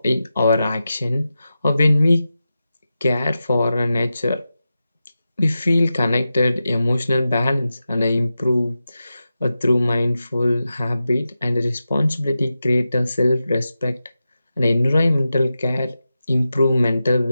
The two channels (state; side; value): inverted; both; correlation -0.92